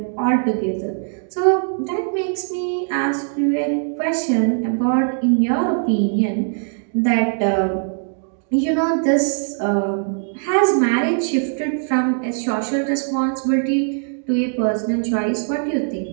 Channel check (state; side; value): silent; left; 65 dB below the other